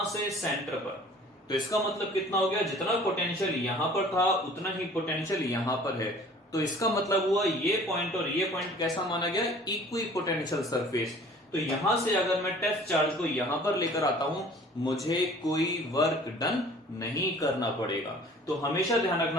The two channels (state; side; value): normal; both; correlation 0.49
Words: से सेंटर पर, तो इसका मतलब कितना हो गया? जितना पोटेंशियल यहां पर था उतना ही पोटेंशियल यहां पर है। तो इसका मतलब हुआ ये पॉइंट और ये पॉइंट कैसा माना गया? Equipotential surface. तो यहां से अगर मैं टेस्ट चार्ज को यहां पर लेकर आता हूं, मुझे कोई वर्क डन नहीं करना पड़ेगा। तो हमेशा ध्यान